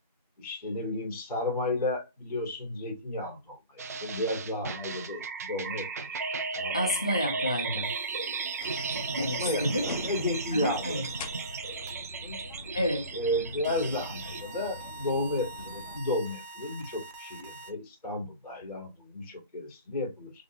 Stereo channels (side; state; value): both; inverted; correlation -0.39